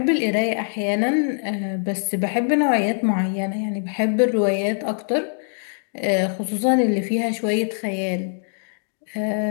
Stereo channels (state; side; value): silent; right; digital silence